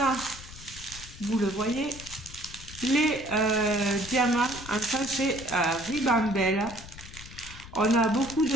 a, vous le voyez, les diamants en sachet ribambelle. On a beaucoup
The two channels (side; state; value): left; noise; rumble, 15 dB below the sound